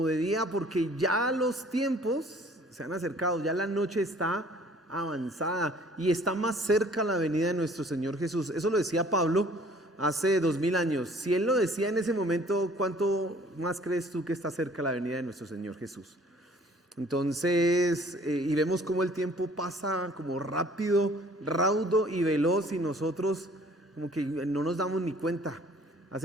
de día, porque ya los tiempos se han acercado, ya la noche está avanzada y está más cerca la venida de nuestro Señor Jesús. Eso lo decía Pablo hace 2000 años. Si él lo decía en ese momento, ¿cuánto más crees tú que está cerca la venida de nuestro Señor Jesús? Entonces, y vemos cómo el tiempo pasa como rápido, raudo y veloz, y nosotros como que no nos damos ni cuenta.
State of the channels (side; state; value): both; normal; correlation 0.54